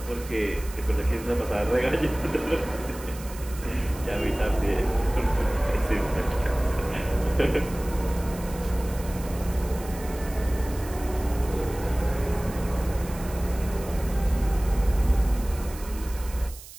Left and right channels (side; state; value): right; noise; hiss, 16 dB below the sound